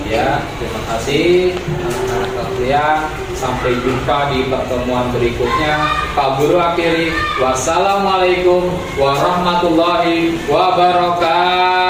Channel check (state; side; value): identical; both; correlation 1.00